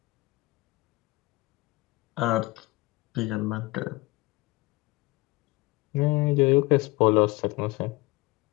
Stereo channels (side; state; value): right; quieter; 21.5 dB